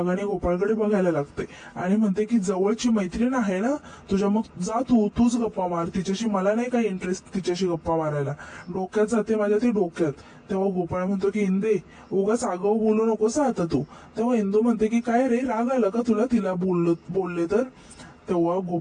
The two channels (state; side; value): identical; both; correlation 1.00